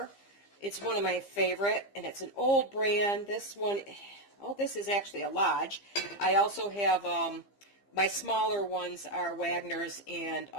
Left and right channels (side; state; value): right; late; 15 ms